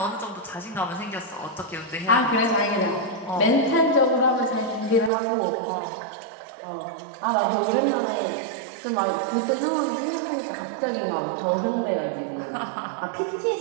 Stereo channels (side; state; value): left; drops out; at 5.1 s